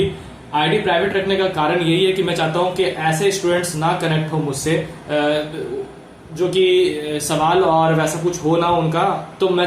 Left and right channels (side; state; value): both; identical; correlation 1.00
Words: आईडी प्राइवेट रखने का कारण यही है कि मैं चाहता हूं कि ऐसे स्टूडेंट्स ना कनेक्ट हो मुझसे जो कि सवाल और वैसा कुछ हो ना उनका। तो मैं